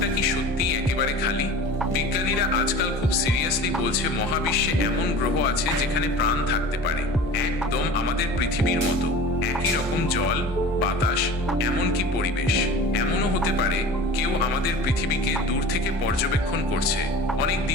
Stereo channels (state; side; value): normal; both; correlation 0.38